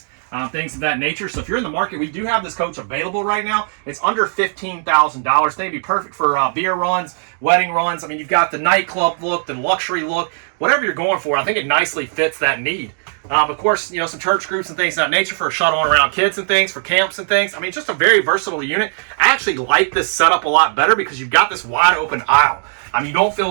Things of that nature. So if you're in the market, we do have this coach available right now. It's under $15,000. They'd be perfect for beer runs, wedding runs. I mean, you've got the nightclub look, the luxury look, whatever you're going for. I think it nicely fits that need. Of course, some church groups and things of that nature for shuttling around kids and things, for camps and things. I mean, just a very versatile unit. I actually like this setup a lot better because you've got this wide open aisle. I mean, you don't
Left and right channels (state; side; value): silent; left; 65 dB below the other